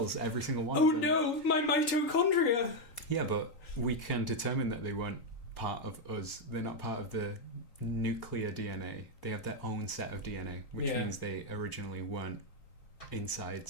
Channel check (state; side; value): late; right; 3.9 ms